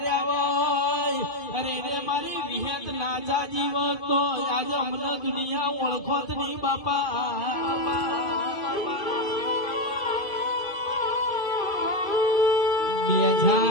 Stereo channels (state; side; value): late; right; 2.5 ms